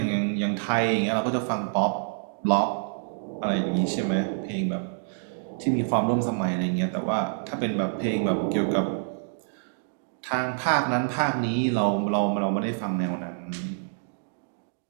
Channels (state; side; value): silent; left; digital silence